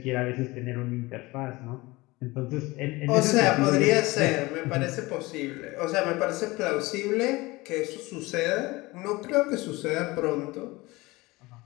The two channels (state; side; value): quieter; right; 21.7 dB